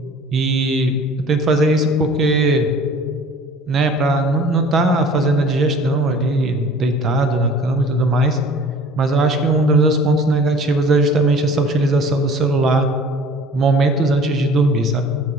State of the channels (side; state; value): both; normal; correlation 0.47